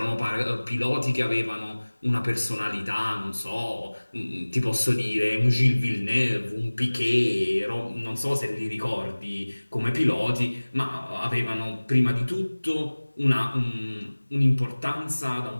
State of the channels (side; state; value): both; inverted; correlation -1.00